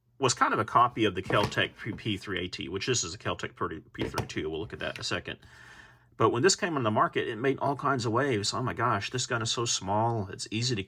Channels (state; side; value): identical; both; correlation 1.00